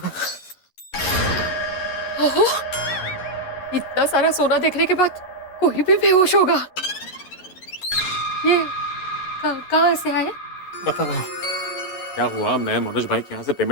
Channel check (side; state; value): right; late; 11 ms